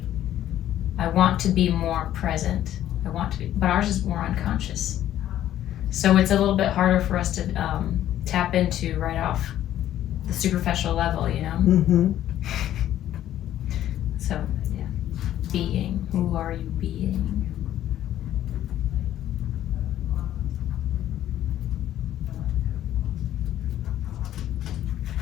I want to be more present. I want to be, but ours is more unconscious. So it's a little bit harder for us to tap into right off the superficial level, you know? Mm-hmm. So, yeah. Being. Who are you being?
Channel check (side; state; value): right; quieter; 12.2 dB